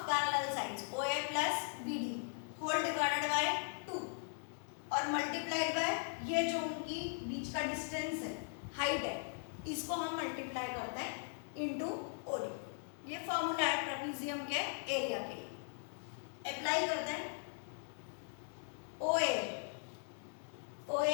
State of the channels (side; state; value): right; silent; digital silence